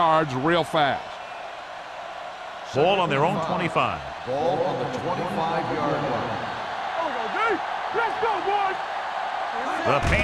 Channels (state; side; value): identical; both; correlation 1.00